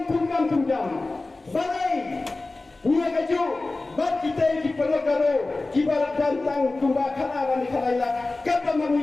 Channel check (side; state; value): right; quieter; 3.2 dB